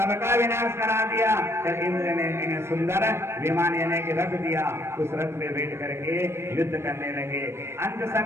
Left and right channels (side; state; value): left; late; 0.12 ms